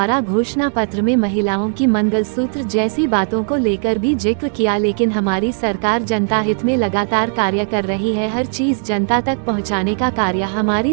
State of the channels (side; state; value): left; silent; 68 dB below the other